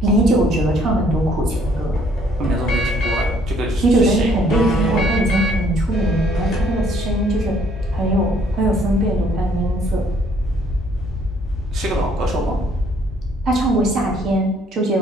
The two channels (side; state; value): both; normal; correlation 0.64